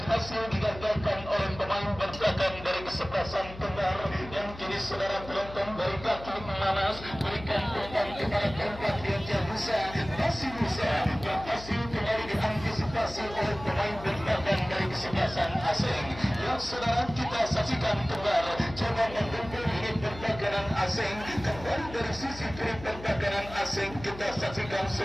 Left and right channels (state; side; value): noise; left; hum, 14 dB below the sound